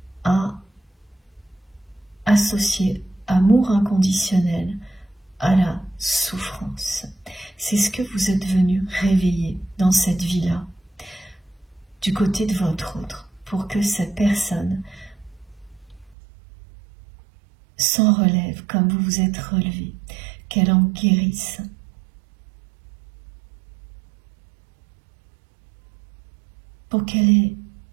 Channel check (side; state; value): left; drops out; at 16.2 s